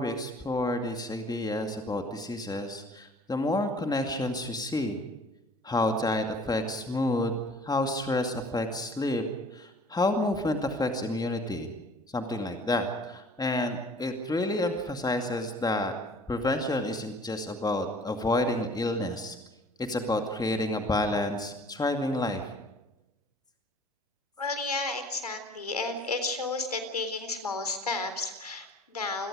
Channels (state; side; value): normal; both; correlation 0.50